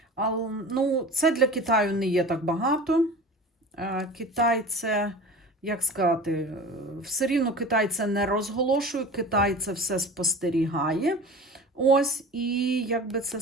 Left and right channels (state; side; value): normal; both; correlation 0.37